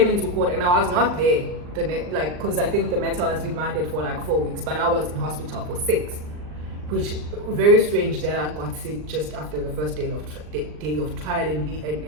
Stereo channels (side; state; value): left; late; 39 ms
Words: into court and I was not there, because I think the matter was remanded for like 4 weeks, but I was in hospital for 6, which very strange that I got sick just after the first day of trial and